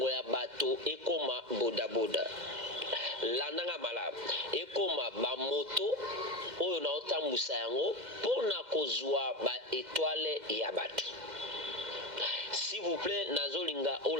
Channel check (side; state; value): left; late; 2.1 ms